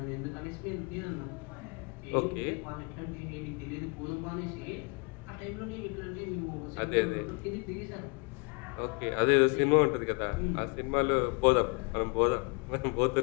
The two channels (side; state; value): right; quieter; 34.4 dB